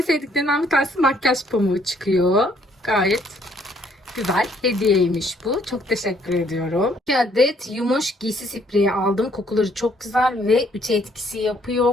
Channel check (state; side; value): normal; both; correlation 0.66